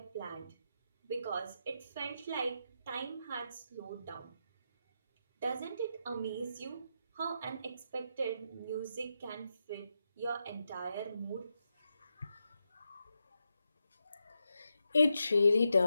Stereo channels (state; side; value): inverted; both; correlation -0.86